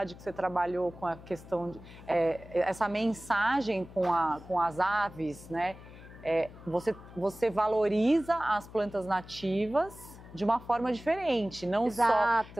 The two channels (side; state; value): left; noise; hum, 18 dB below the sound